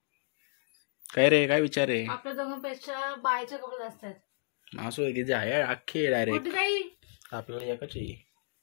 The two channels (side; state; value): right; silent; digital silence